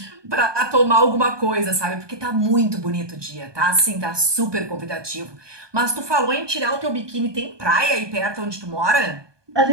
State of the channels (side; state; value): left; late; 1.2 ms